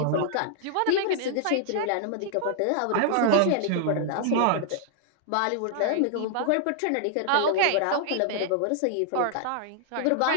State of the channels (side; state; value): both; different; correlation -0.01